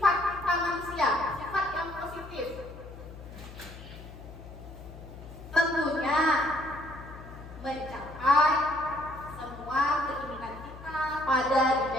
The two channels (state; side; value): noise; left; hum, 15 dB below the sound